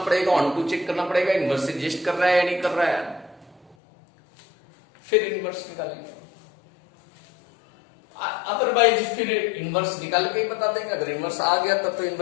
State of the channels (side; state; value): right; drops out; at 3.8 s